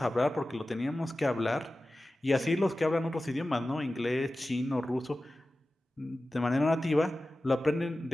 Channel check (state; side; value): normal; both; correlation 0.95